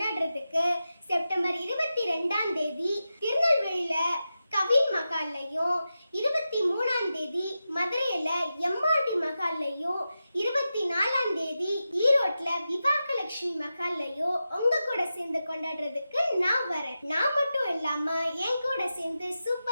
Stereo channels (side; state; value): both; inverted; correlation -0.91